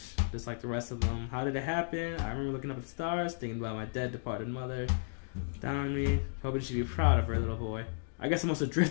just like the rest of them. How did it happen? I remember looking up at the stars, thinking about my dead, departed mother. Down on me, hoping she'd be proud of her little boy. I guess I must have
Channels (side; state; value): right; silent; digital silence